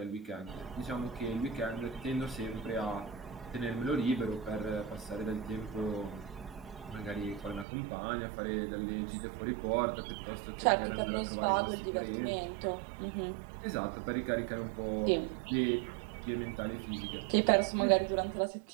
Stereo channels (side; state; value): left; drops out; at 7.7 s